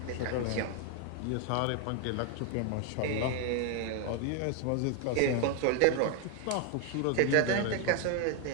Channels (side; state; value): both; different; correlation 0.01